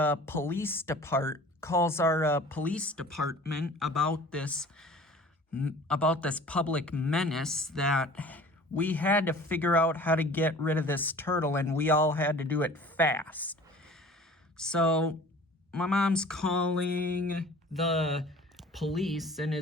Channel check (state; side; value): normal; both; correlation 0.45